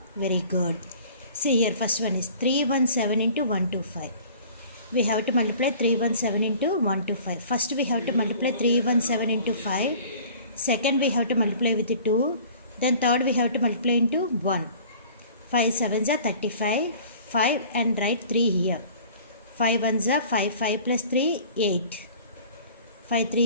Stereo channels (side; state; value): both; inverted; correlation -0.47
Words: Very good. See here, first one is 317 into 125. We have to multiply 317 into 125. First we have to multiply 317 into 5. Second we have to multiply with 2. Then third we have to multiply into 1. 5 sevens are 35. 5 and write 3 here. 5 ones are 5. 5 plus 3, 8. 5